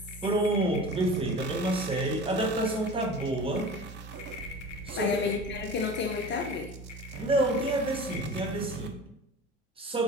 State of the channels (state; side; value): normal; both; correlation 0.36